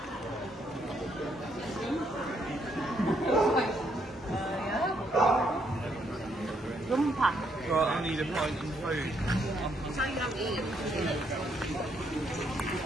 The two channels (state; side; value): normal; both; correlation 0.73